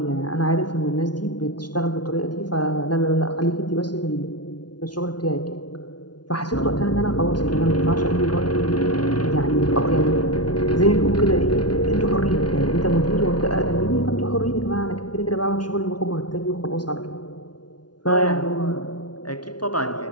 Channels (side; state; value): right; late; 0.70 ms